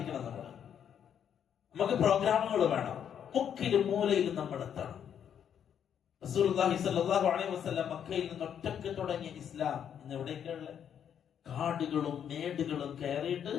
നമുക്ക് പ്രോഗ്രാമുകൾ വേണം. മുക്കിലും മൂലയിലും നമ്മൾ എത്തണം. റസൂലുള്ളാഹി സ്വല്ലല്ലാഹു അലൈഹി വസല്ലം മക്കയിൽ നിന്ന് ഒറ്റക്ക് തുടങ്ങിയ ഇസ്ലാം ഇന്ന് എവിടേക്കുള്ള കാടുകളും മേടുകളും കയറിയിട്ട്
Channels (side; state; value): right; quieter; 8.8 dB